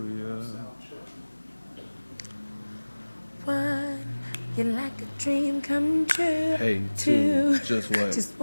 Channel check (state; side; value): inverted; both; correlation -1.00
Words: Yeah. One, you're like a dream come true. Hey, Two, just what? just